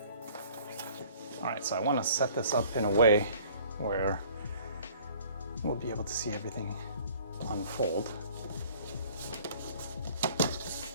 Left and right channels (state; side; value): inverted; both; correlation -0.52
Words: All right, so I want to set this up in a way where we'll be able to see everything unfold.